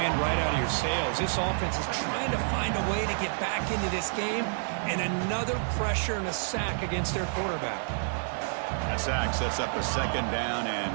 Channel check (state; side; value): silent; left; 58 dB below the other